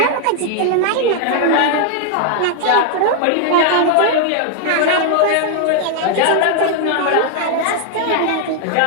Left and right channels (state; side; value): different; both; correlation 0.00